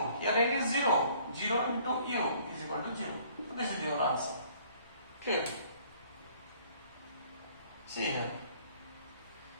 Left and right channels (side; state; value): both; inverted; correlation -0.58